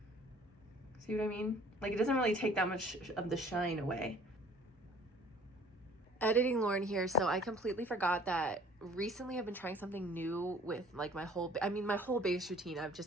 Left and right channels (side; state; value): both; normal; correlation 0.53